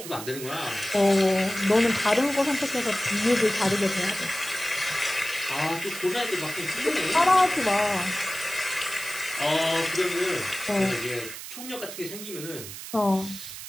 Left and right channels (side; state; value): right; noise; hiss, 11 dB below the sound